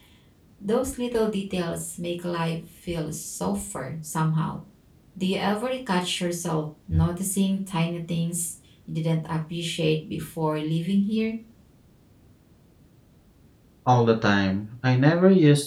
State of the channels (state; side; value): identical; both; correlation 1.00